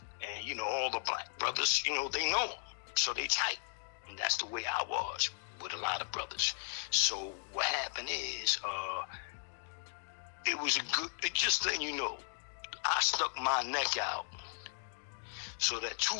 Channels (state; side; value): silent; right; digital silence